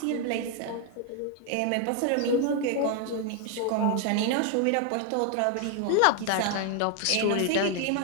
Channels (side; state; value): both; different; correlation 0.00